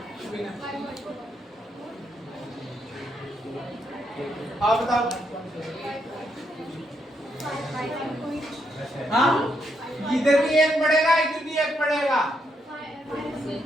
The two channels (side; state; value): both; normal; correlation 0.78